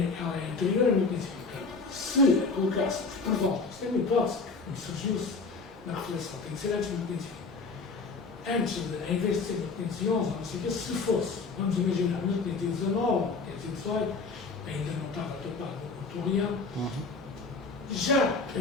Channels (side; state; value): right; quieter; 4.2 dB